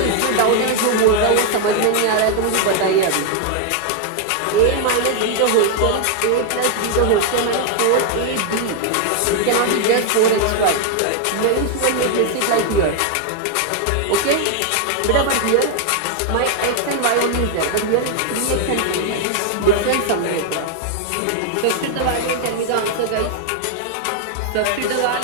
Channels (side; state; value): both; different; correlation 0.00